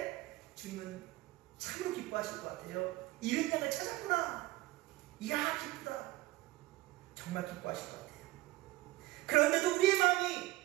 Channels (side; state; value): left; quieter; 19.0 dB